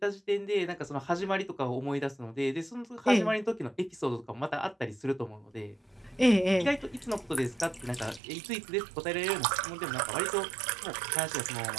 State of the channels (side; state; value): left; drops out; at 8.2 s